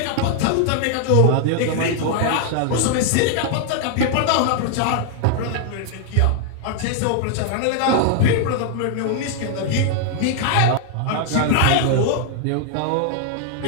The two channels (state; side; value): different; both; correlation 0.00